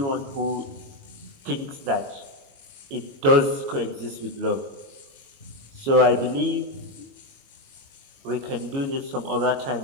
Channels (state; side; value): late; left; 22 ms